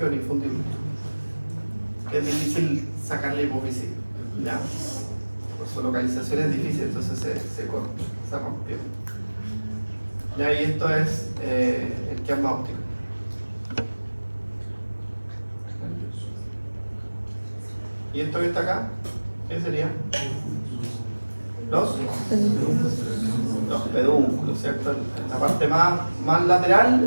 el infundíbulo. Es difícil sacar la hipófisis, ¿ya? Por su localización es difícil, entonces se corta, se rompió. ¿Ya? Y esto es el quiasma óptico. ¿Y esto que está acá? ¿Qué sería? Los pedúnculos, ¿cierto? En la parte más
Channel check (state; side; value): inverted; both; correlation -1.00